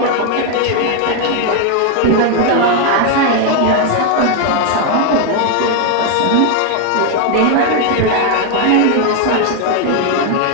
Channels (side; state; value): both; different; correlation 0.01